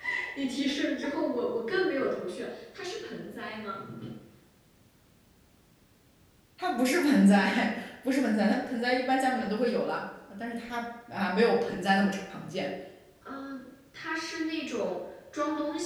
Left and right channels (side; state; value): both; identical; correlation 1.00